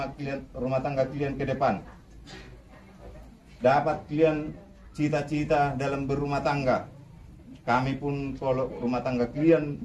tangga kalian ke depan. Dapat kalian cita-cita dalam berumah tangga. Kami pun kalau rumah tangga kalian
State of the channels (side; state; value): both; identical; correlation 1.00